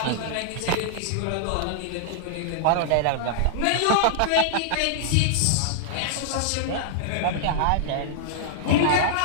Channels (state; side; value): different; both; correlation -0.01